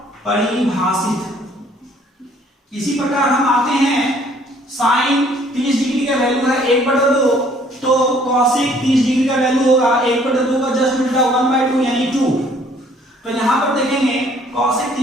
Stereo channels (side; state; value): both; normal; correlation 0.60